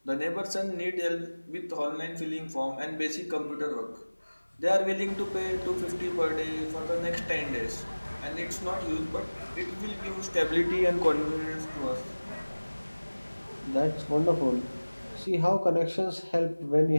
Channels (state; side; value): inverted; both; correlation -1.00